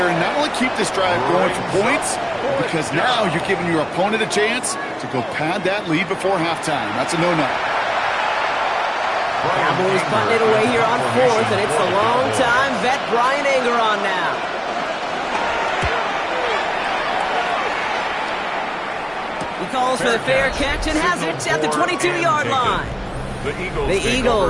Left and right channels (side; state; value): both; identical; correlation 1.00